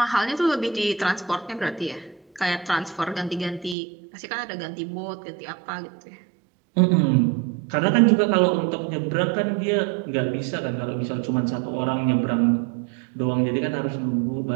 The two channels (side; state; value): left; drops out; at 3.8 s